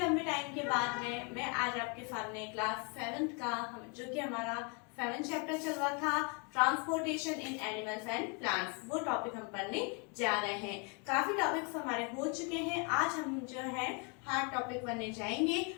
टाइम के बाद में मैं आज आपके सामने क्लास 7th का जो कि हमारा 7th चैप्टर चल रहा था, transportation in animals and plants, वो टॉपिक हम पढ़ने जा रहे हैं। काफी टॉपिक्स हमारे हो चुके हैं। आज हम जो है हार्ड टॉपिक पढ़ने जाएंगे।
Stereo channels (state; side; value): quieter; right; 33.2 dB